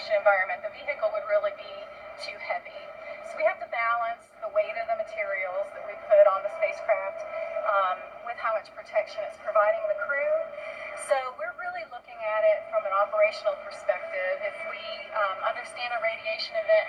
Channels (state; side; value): identical; both; correlation 1.00